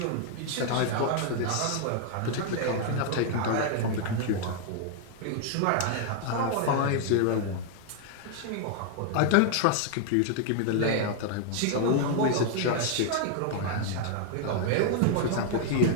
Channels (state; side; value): different; both; correlation 0.00